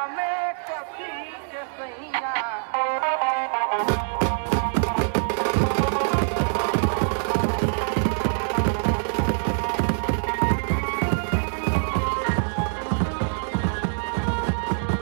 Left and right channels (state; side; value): silent; left; digital silence